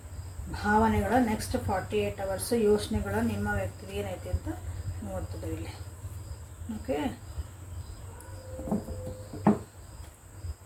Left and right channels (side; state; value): both; identical; correlation 1.00